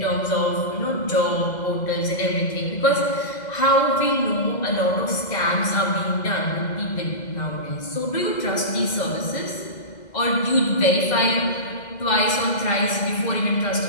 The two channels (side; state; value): right; late; 2.0 ms